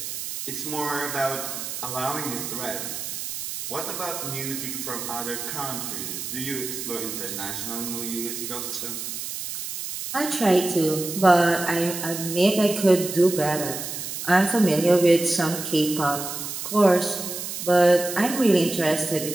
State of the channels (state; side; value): noise; right; hiss, 6 dB below the sound